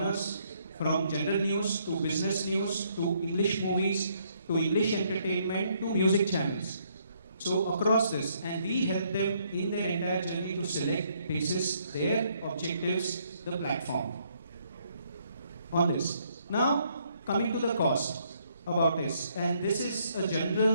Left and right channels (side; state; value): both; inverted; correlation -0.70